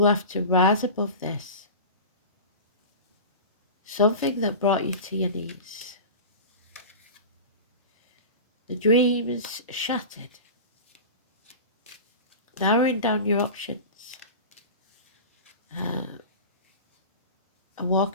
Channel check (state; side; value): inverted; both; correlation -0.32